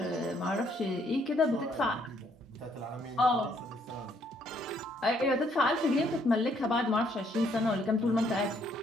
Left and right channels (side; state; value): both; normal; correlation 0.68